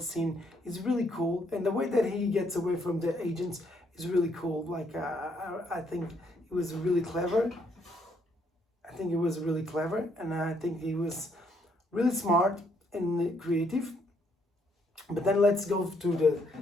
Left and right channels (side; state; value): both; normal; correlation 0.71